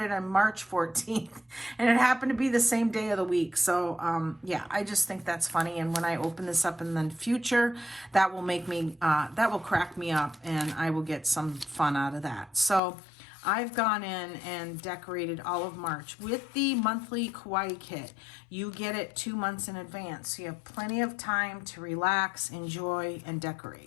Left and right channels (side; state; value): right; drops out; at 12.8 s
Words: on March 14th. And it happened to be the same day of the week. So yeah, I just think that's funny. And when I open this up in the future, that will make me, that will crack me up, and I will get some fun out of that. So I've gone in and decorated all of March with the monthly kawaii kit. You get it 2 months in advance, so you have plenty of time to relax, enjoy, and